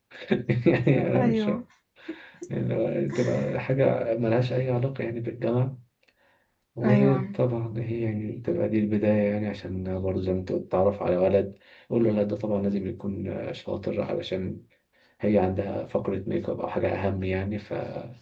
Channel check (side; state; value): both; identical; correlation 1.00